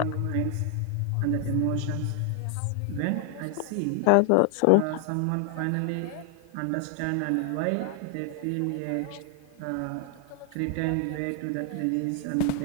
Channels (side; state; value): both; different; correlation 0.00